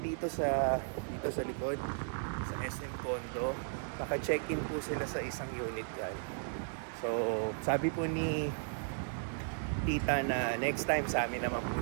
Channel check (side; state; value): left; silent; 54 dB below the other